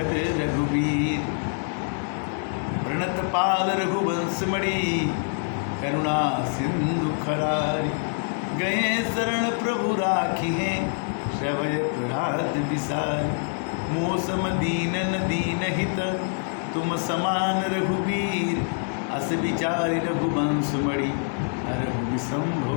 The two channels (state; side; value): silent; right; 58 dB below the other